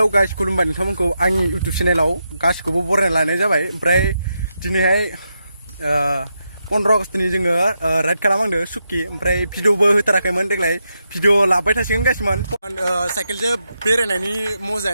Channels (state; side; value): inverted; both; correlation -0.84